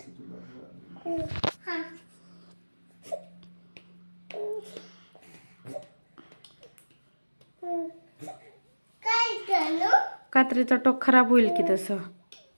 कात्रीचा टोक खराब होईल की तसं.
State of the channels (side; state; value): both; inverted; correlation -1.00